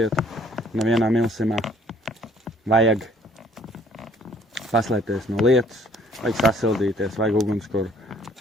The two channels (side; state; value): both; normal; correlation 0.59